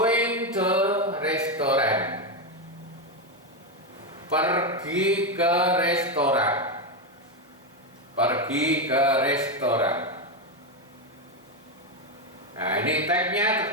to restaurant. Pergi ke restoran. Pergi ke restoran. Nah, ini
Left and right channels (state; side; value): normal; both; correlation 0.08